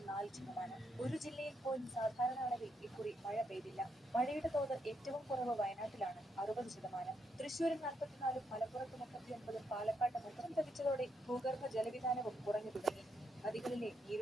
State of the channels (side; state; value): both; normal; correlation 0.78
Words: ഒരു ജില്ലയിൽ പോലും സാധാരണ അളവിൽ ഇക്കുറി മഴ പെയ്തില്ല. മഴയുടെ തോത് ഏറ്റവും കുറവ് വയനാട്ടിലാണ്, 60%. തൃശൂരിൽ 44, മലപ്പുറത്ത് 39, പാലക്കാട്ട് 30 ലഭിച്ചതോടെ ഭൂഗർഭ ജലവിധാനവും കുറഞ്ഞു തുടങ്ങി. നദികളിലെ